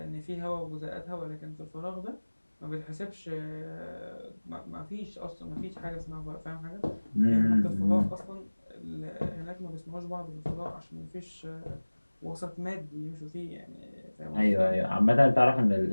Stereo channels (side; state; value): both; inverted; correlation -1.00